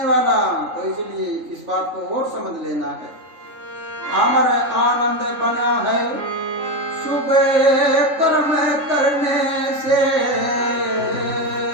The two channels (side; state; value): left; late; 3.4 ms